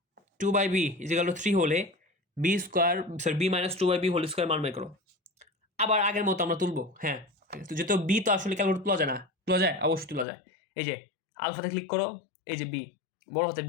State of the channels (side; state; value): right; drops out; at 10.2 s